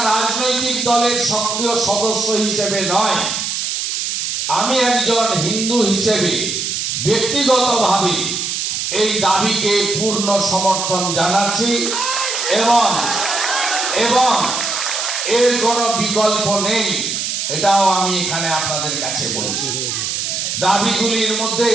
রাজনৈতিক দলের সক্রিয় সদস্য হিসেবে নয়, আমি একজন হিন্দু হিসেবে ব্যক্তিগতভাবে এই দাবিকে পূর্ণ সমর্থন জানাচ্ছি এবং এর কোনো বিকল্প নেই, এটাও আমি এখানে আপনাদের কাছে বলছি। দাবিগুলির মধ্যে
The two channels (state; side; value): noise; right; hiss, 2 dB below the sound